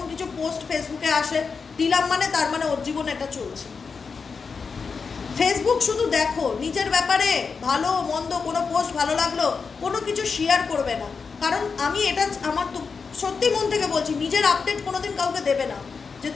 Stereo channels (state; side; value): quieter; right; 5.2 dB